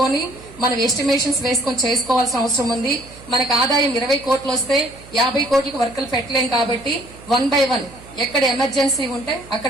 మనం ఎస్టిమేషన్స్ వేసుకొని చేసుకోవాల్సిన అవసరం ఉంది. మనకు ఆదాయం 20 కోట్లు వస్తే 50 కోట్లకు వర్కులు పెట్టలేం కాబట్టి 1 by 1 ఎక్కడ ఎమర్జెన్సీ ఉంటే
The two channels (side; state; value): right; noise; hum, 21 dB below the sound